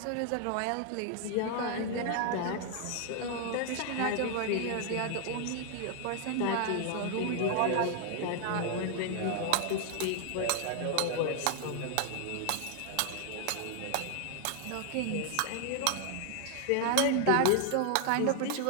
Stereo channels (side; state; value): both; different; correlation 0.00